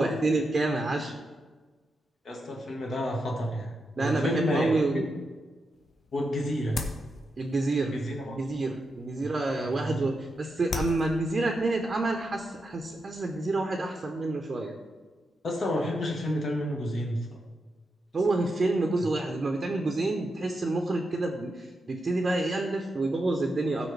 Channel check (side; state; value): both; normal; correlation 0.86